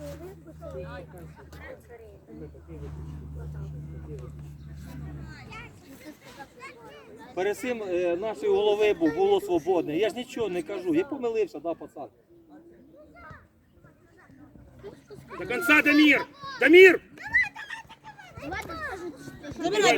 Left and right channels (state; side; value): identical; both; correlation 1.00